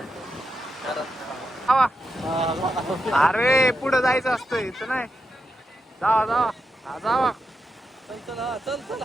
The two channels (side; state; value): both; normal; correlation 0.86